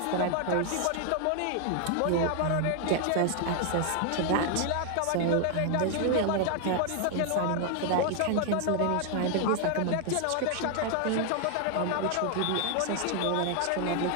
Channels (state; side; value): different; both; correlation 0.00